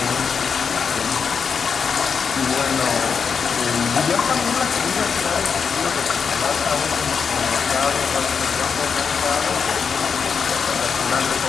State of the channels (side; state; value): right; quieter; 6.1 dB